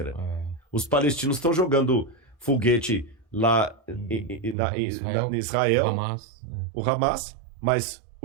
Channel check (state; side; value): drops out; left; at 4.5 s